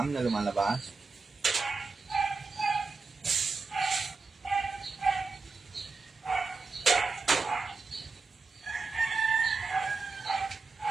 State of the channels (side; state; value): left; quieter; 4.2 dB